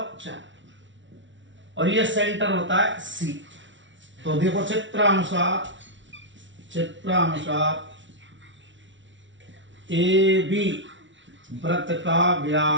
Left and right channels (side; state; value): left; late; 0.55 ms